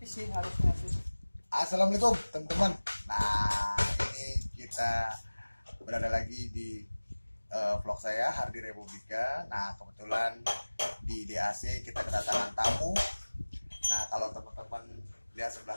sih harusnya sih. Assalamualaikum teman-teman. Nah, ini kita berada lagi di vlog saya Hardi Republika. Nah, kebetulan di DAC kita kedatangan tamu. Nah, kalau teman-teman lihat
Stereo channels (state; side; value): inverted; both; correlation -1.00